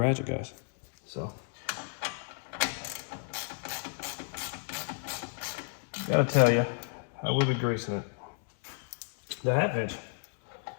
guys. So gotta tell you, I will be greasing it. The half inch,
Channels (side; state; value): right; silent; 56 dB below the other